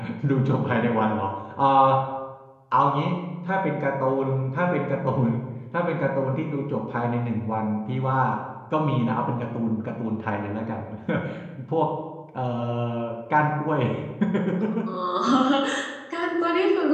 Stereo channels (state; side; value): identical; both; correlation 1.00